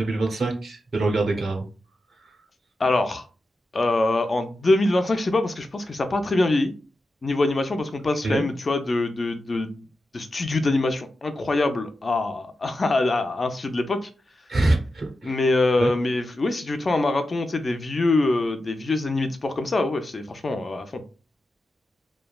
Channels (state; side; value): normal; both; correlation 0.90